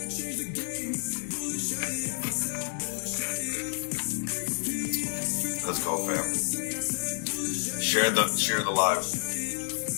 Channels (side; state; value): right; silent; 58 dB below the other